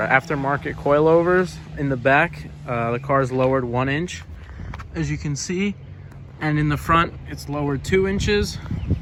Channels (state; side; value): identical; both; correlation 1.00